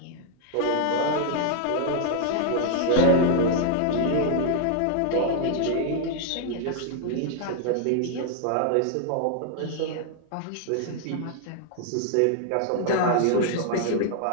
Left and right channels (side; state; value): both; different; correlation 0.00